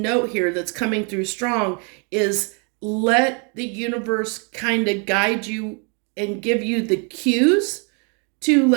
here that's coming through strong is let the universe kind of guide you and give you the cues to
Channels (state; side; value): quieter; left; 36.4 dB